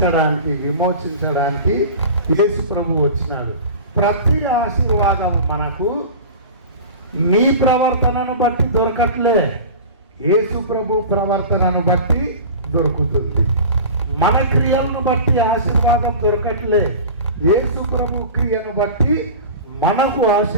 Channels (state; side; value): inverted; both; correlation -0.35